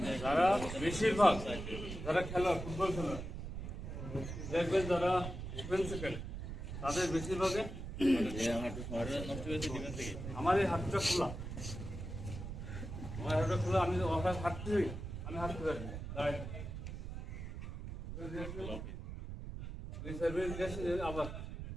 যারা বেশিরভাগ যারা খেলোয়াড়, ফুটবল খেলোয়াড় দেখবেন, যারা ডিফেন্সে খেলে, তাদের বেশিরভাগে আমার এই হাতটা খোলা, আমার হাতটা খোলা, আমি হাঁটতে হই, আমি হাঁটতে পারি আবার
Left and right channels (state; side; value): noise; right; rumble, 7 dB below the sound